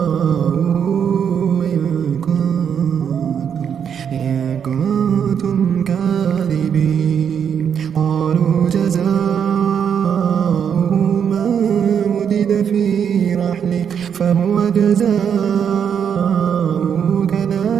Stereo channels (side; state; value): left; quieter; 7.8 dB